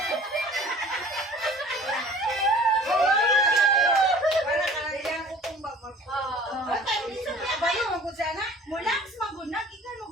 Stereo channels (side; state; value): both; normal; correlation 0.47